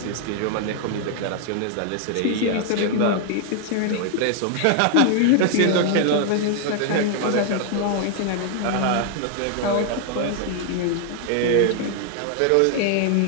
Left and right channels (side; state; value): both; different; correlation 0.00